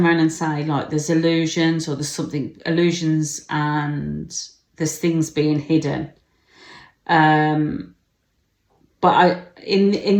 around and say, like, there's illusions, or there's something, illusions, and there's things being hidden. But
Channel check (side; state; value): both; identical; correlation 1.00